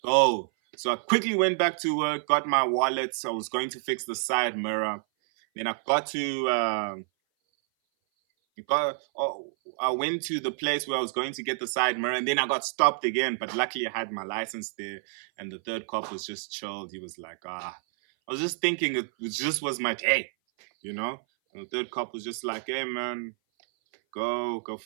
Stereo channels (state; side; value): silent; left; 57 dB below the other